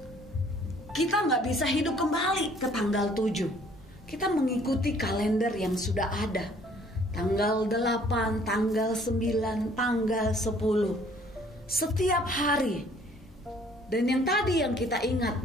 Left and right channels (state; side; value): normal; both; correlation 0.58